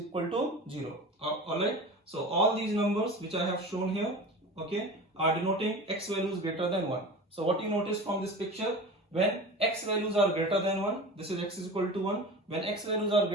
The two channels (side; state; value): both; normal; correlation 0.34